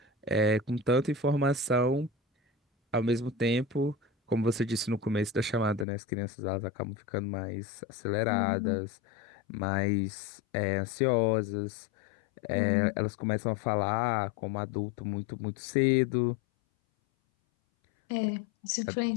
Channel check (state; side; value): drops out; right; at 5.9 s